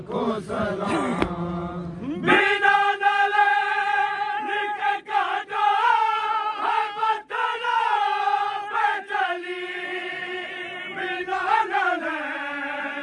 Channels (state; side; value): identical; both; correlation 1.00